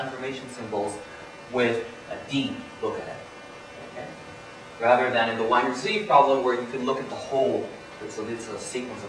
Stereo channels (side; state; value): both; identical; correlation 1.00